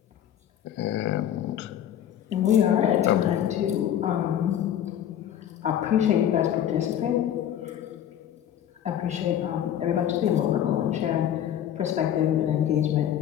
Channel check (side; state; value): right; quieter; 10.5 dB